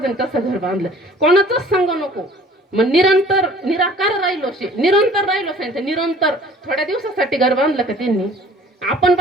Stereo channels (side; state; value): both; normal; correlation 0.51